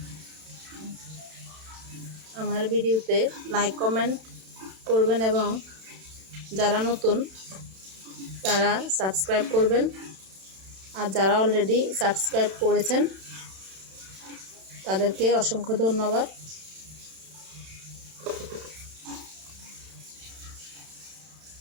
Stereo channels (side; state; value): left; late; 31 ms